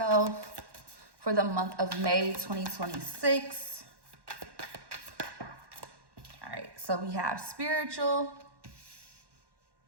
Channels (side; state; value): left; late; 1.1 ms